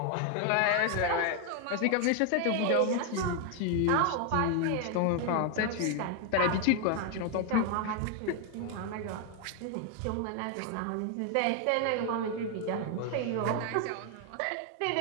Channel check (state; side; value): different; both; correlation 0.01